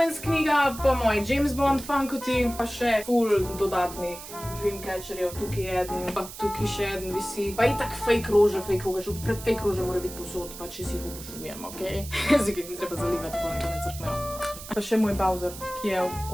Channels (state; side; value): noise; right; hiss, 13 dB below the sound